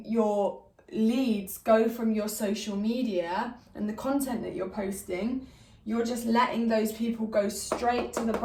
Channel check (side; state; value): both; identical; correlation 1.00